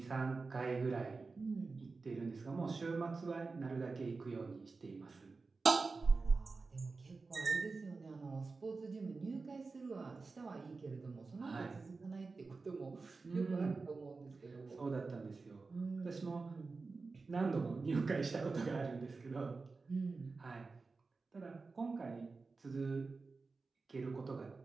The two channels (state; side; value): quieter; left; 4.1 dB